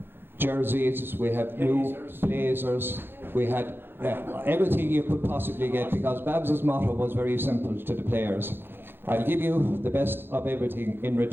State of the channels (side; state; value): left; late; 0.10 ms